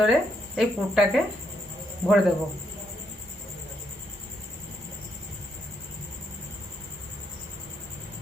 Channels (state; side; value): normal; both; correlation 0.77